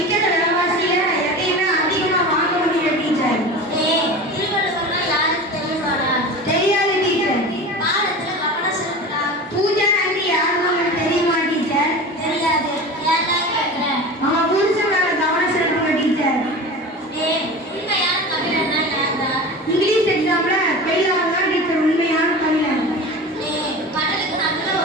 விலைவாசியில எதையுமே அதிகமா வாங்க முடியல டீச்சர். திருவள்ளுவர்னா யாருக்கு தெரியுமாடா? தெரியாது டீச்சர். பாடத்துல கவனம் செலுத்துடா. பூஜா ஆண்டி யாருன்னு உங்களுக்கு தெரியுமா டீச்சர்? தெரியாது. ஏன்டா கேக்குறேன்? நம்ம புருஷன் மேல கவனம் செலுத்துங்க டீச்சர். உண்மையான தமிழன்னா யாருடா? இங்கிலீஷ் எக்ஸாம்ல ஃபெயில் ஆனா டீச்சர் உண்மையான தமிழன். கடலுக்கு நடுவுல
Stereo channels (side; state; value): both; normal; correlation 0.32